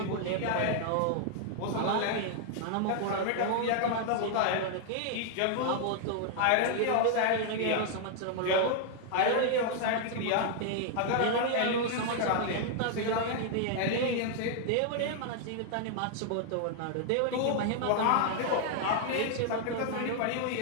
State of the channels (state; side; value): different; both; correlation 0.00